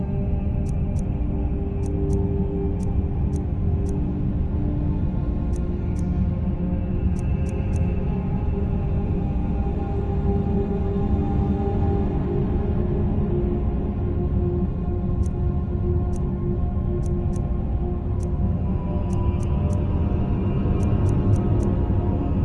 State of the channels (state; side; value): identical; both; correlation 1.00